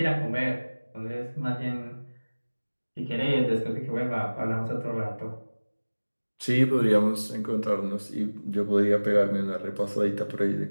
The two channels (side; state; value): both; inverted; correlation -1.00